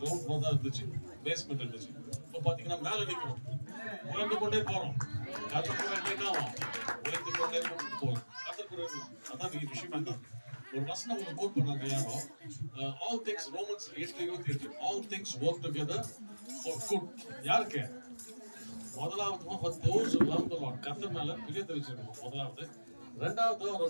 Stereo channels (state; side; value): inverted; both; correlation -1.00